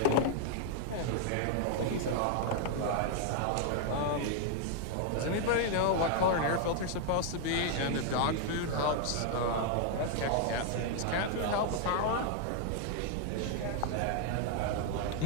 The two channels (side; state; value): both; different; correlation 0.00